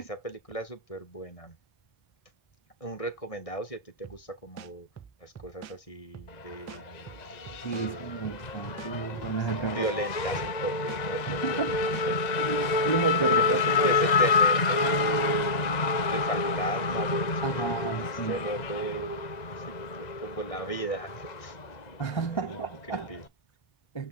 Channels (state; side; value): late; right; 1.9 ms